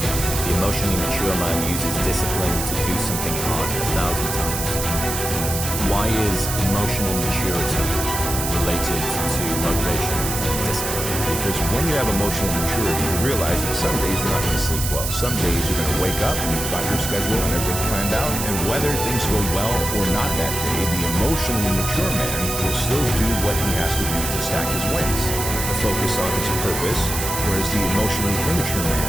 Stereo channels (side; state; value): right; noise; hiss, 4 dB below the sound